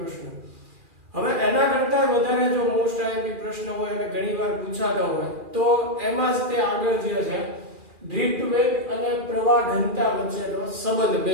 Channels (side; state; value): left; late; 2.4 ms